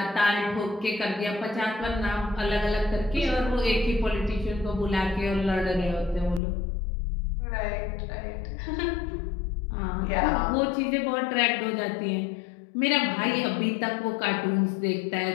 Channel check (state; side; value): drops out; right; at 6.4 s